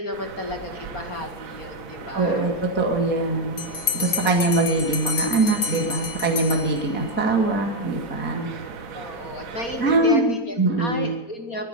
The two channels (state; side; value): late; right; 4.3 ms